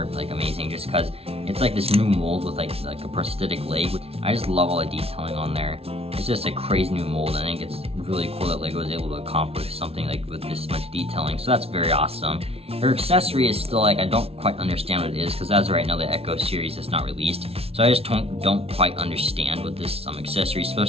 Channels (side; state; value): left; late; 0.29 ms